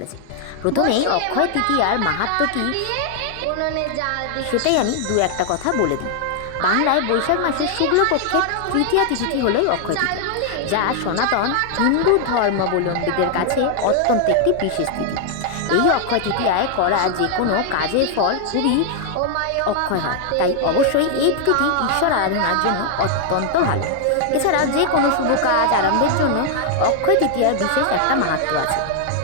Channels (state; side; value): different; both; correlation 0.00